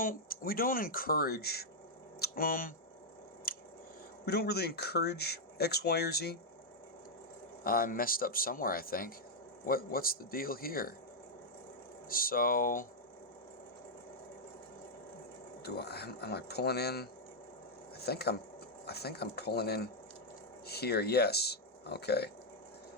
we don't encourage, we don't really encourage X, Y, or Z. I messed up somewhere, I think. What's the deal here? So, am I pulling in? I think I'm pulling in here. Yes. Okay.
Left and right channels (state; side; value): normal; both; correlation -0.04